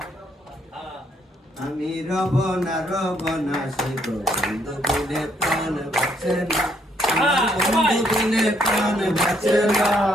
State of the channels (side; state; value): both; normal; correlation 0.70